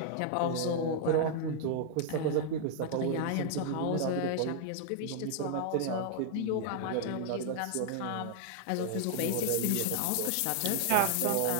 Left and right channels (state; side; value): different; both; correlation 0.00